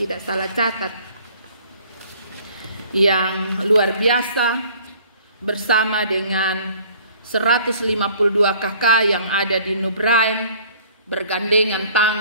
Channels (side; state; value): both; inverted; correlation -0.54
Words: salah catat, yang luar biasa, bersama dengan 152 kakak yang ada di Nubrain, bergandengan